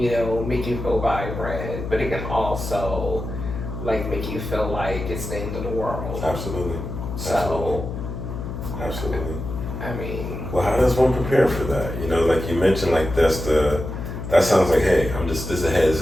make you feel vibrant, but it can also make you feel like it's the end of the world. Absolutely. So. Absolutely. I mean. Well, how does one prepare for that? Like you mentioned, like that sounds like, hey, this is a heads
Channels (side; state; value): left; noise; hum, 7 dB below the sound